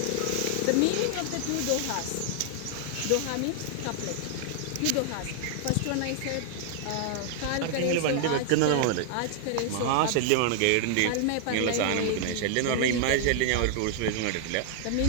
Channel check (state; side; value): different; both; correlation 0.00